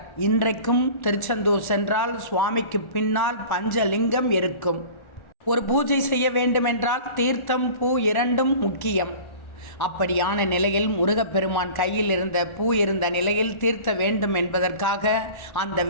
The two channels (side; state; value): right; late; 1.4 ms